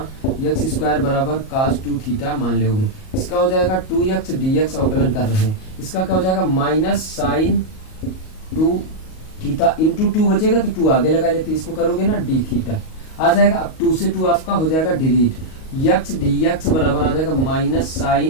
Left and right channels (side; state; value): right; late; 38 ms